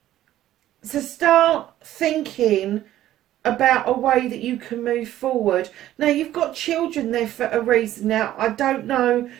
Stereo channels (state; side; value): quieter; left; 13.3 dB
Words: So start thinking about a way that you can move forward. Now, you've got children there for a reason. Now, I don't know